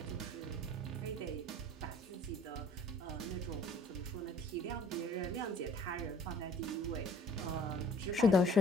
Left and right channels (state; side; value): normal; both; correlation 0.53